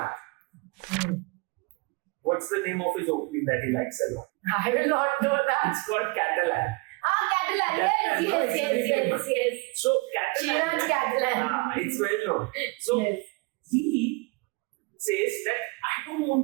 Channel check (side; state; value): left; quieter; 27.6 dB